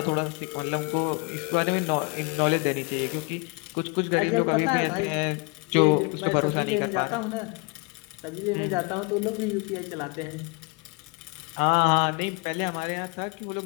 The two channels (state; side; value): quieter; right; 29.9 dB